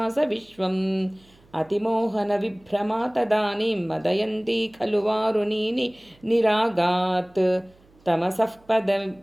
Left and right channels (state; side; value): noise; right; hum, 30 dB below the sound